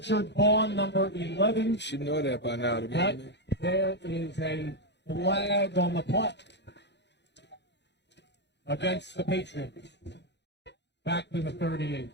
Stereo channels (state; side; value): late; right; 0.50 ms